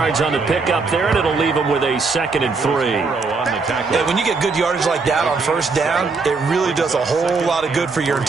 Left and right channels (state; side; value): quieter; left; 4.3 dB